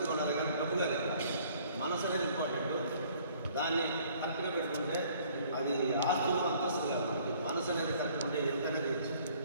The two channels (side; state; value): both; inverted; correlation -0.58